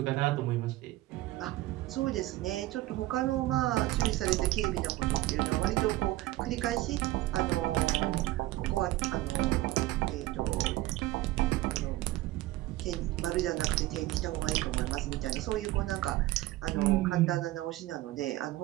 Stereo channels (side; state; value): left; quieter; 17.3 dB